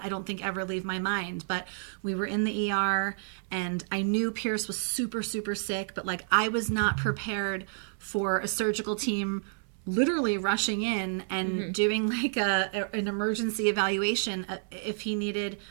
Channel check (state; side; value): silent; left; 58 dB below the other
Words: I don't think, ever leave my mind. But we were in the ER, and I knew Pierce was super, super sick, but like I was not prepared for a surgical team literally rushing in and doing like an emergency evaluation if he needed